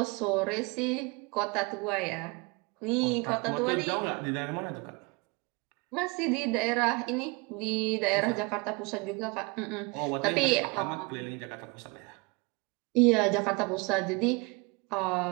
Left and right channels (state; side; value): quieter; left; 28.3 dB